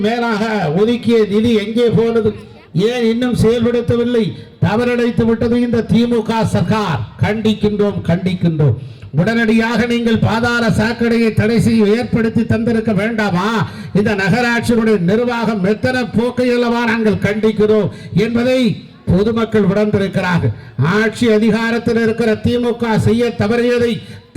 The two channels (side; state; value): both; identical; correlation 1.00